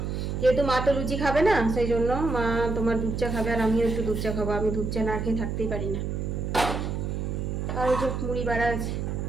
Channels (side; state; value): right; noise; hum, 3 dB below the sound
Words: যেহেতু মা তো লুচি খাবে না, সেই জন্য মা তোমার দুধ চা খাবে, আর আমিও একটু দুধ চা খাবো। আমি দুধ চা না খেয়ে থাকতেই পারি না। আর ওই যে মুড়ি বাড়া আছে।